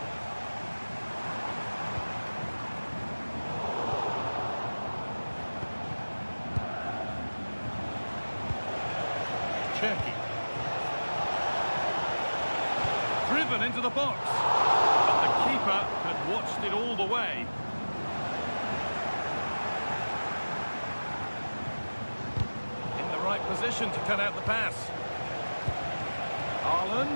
Cherki. Driven into the box. But the keeper had watched it all the way. In the right position to cut out the pass.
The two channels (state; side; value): inverted; both; correlation -1.00